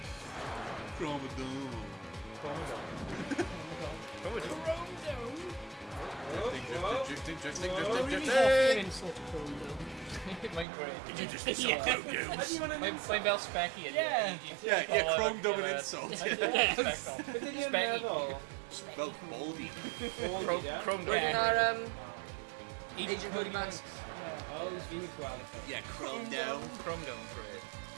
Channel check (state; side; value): drops out; left; at 10.7 s